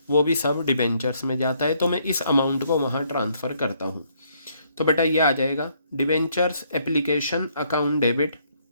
वो भी सब डिबेंचर्स में जाता है। तो मैं इस अमाउंट को वहाँ ट्रांसफ़र करता हूँ। तो बेटा ये आ जाएगा debentures application account debit,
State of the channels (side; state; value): both; inverted; correlation -0.70